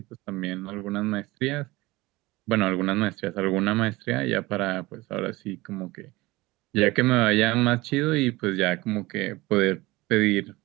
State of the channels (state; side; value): quieter; left; 20.7 dB